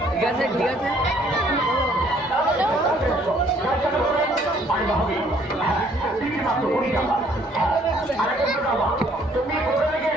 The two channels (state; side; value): normal; both; correlation 0.62